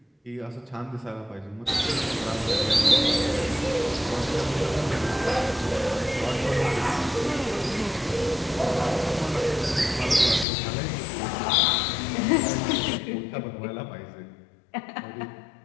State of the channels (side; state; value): right; drops out; at 10.5 s